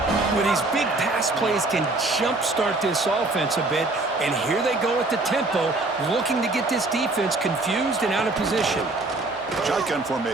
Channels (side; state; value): left; quieter; 3.0 dB